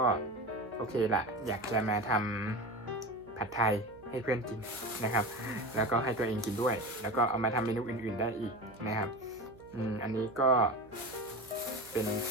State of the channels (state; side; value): noise; right; hum, 22 dB below the sound